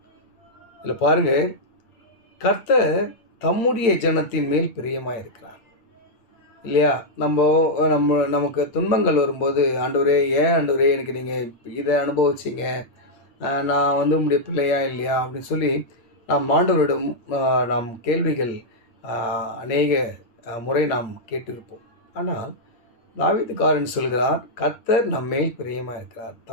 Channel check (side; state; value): right; late; 8.6 ms